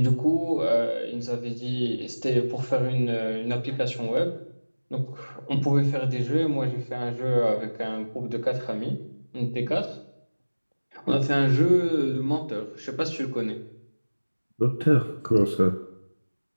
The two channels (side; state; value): both; inverted; correlation -1.00